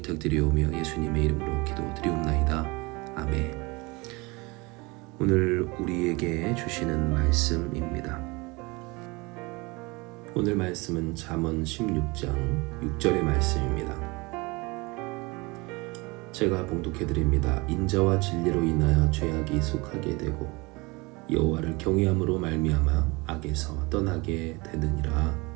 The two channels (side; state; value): left; quieter; 25.3 dB